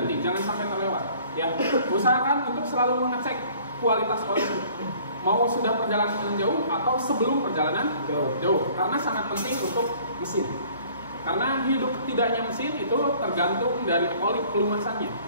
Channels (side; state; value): both; inverted; correlation -0.54